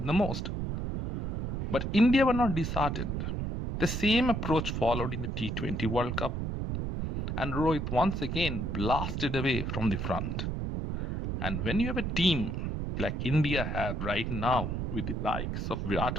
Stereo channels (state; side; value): noise; right; rumble, 2 dB below the sound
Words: the most. But India were not disheartened. The same approach followed in the T20 World Cup, and Rohit once again blasted away from the front. And when you have a team like India have right now, with the likes of